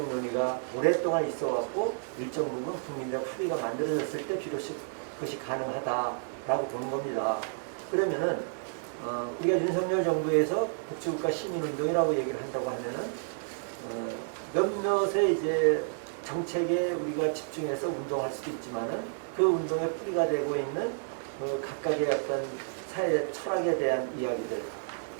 논의가 오랫동안 있어 왔고 일정 부분 국민적 합의가 만들어졌을 때 비로소 그것이 가능하다라고 보는 겁니다. 그러면은 우리가 윤석열 정부에서 복지국가 시민운동이라고 얘기를 한다고 하면은 몇몇의 이제 정책에 우리가 집중해서 운동할 수도 있지만은 그 운동의 뿌리가 되고 있는 그 각각의 어떤 사회 철학에 대한 이야기들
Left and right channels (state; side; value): silent; left; digital silence